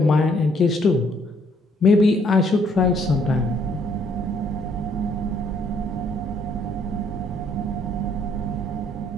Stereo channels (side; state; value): both; normal; correlation 0.66